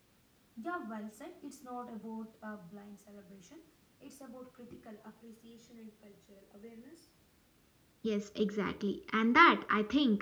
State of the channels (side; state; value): both; identical; correlation 1.00